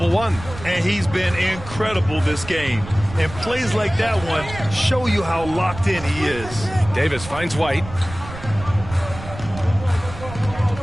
One. And he's been incredible this game. And plays like that one show you how locked in he is. Davis finds White.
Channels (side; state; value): right; noise; rumble, 13 dB below the sound